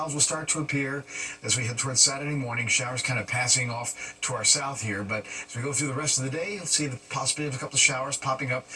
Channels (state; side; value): identical; both; correlation 1.00